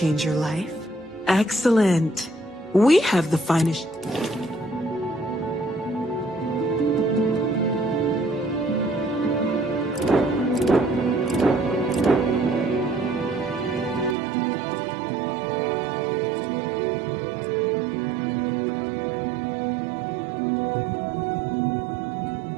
your life? Excellent. We have the finest...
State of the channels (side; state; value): left; drops out; at 14.2 s